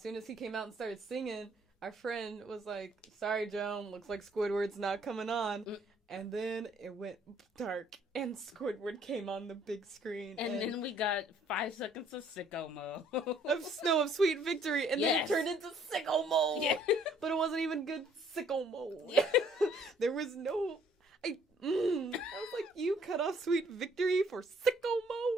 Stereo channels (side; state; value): both; normal; correlation 0.62